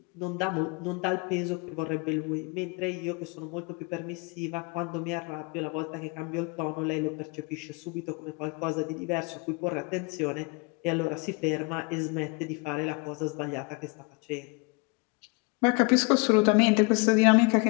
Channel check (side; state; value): right; quieter; 30.9 dB